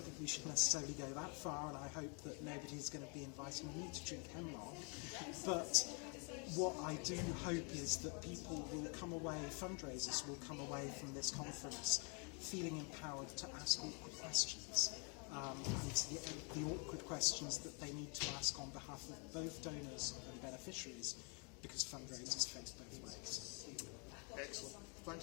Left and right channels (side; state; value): right; quieter; 36.2 dB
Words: we should necessarily go that far, and I hope that nobody's going to be inviting me to drink hemlock. But what I do hope is that people will come away, fundraisers will come away from this conference feeling empowered to ask awkward questions, and the awkward questions that they need to ask on behalf of both donors and beneficiaries, because fundraisers face both ways. Excellent.